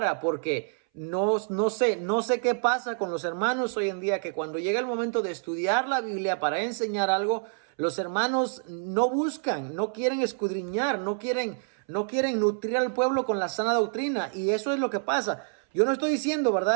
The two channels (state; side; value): silent; left; 59 dB below the other